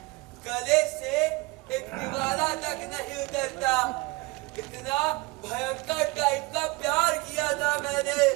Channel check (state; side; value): quieter; left; 23.4 dB